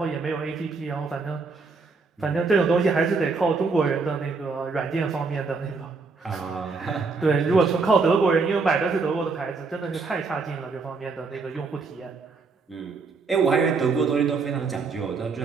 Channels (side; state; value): left; quieter; 4.4 dB